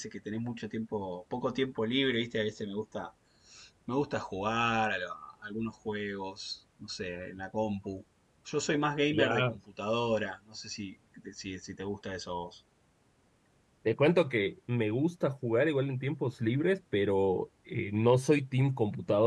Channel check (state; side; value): identical; both; correlation 1.00